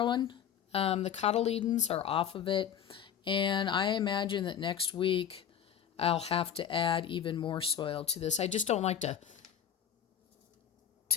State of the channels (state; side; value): quieter; right; 9.0 dB